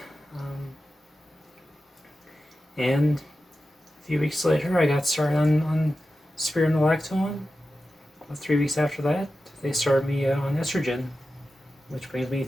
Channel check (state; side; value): normal; both; correlation 0.93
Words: And a few weeks later, I got started on spironolactone. About 3 weeks after that, they started me on estrogen, which brings me